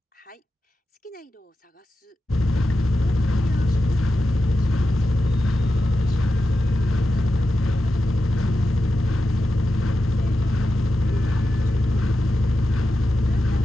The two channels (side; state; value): both; normal; correlation 0.90